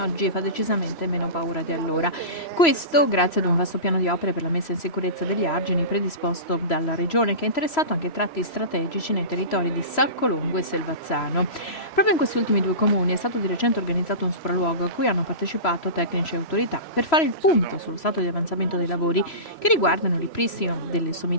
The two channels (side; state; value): right; late; 3.0 ms